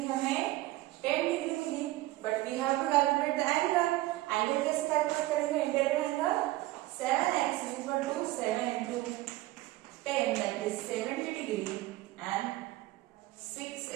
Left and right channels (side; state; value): left; quieter; 17.7 dB